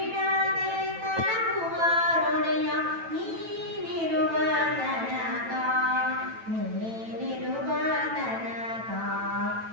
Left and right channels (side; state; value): left; late; 9.1 ms